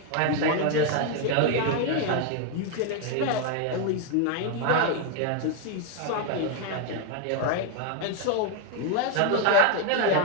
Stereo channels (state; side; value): different; both; correlation 0.01